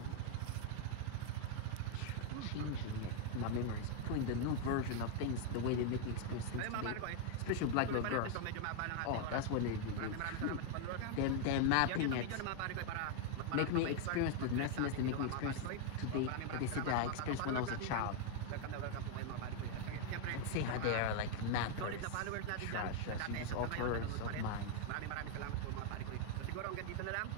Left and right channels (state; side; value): different; both; correlation 0.00